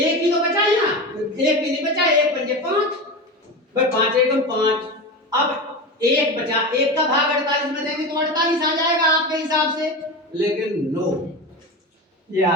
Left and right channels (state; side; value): normal; both; correlation 0.24